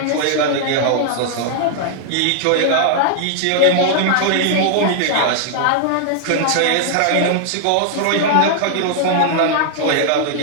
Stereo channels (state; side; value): different; both; correlation -0.01